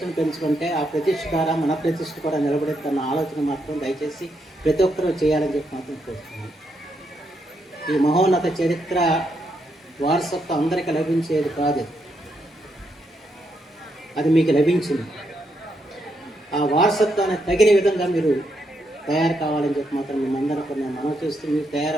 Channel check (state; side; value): normal; both; correlation 0.79